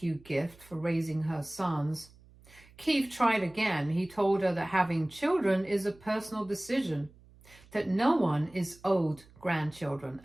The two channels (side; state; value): right; noise; hum, 25 dB below the sound